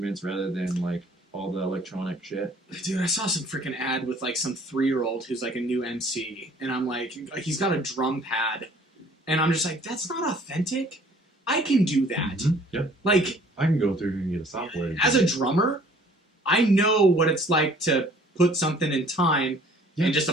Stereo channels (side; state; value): both; normal; correlation 0.55